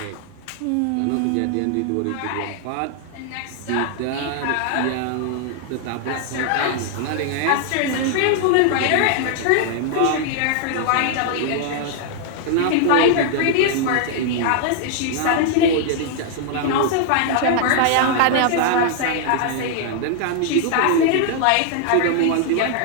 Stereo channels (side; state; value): both; different; correlation 0.00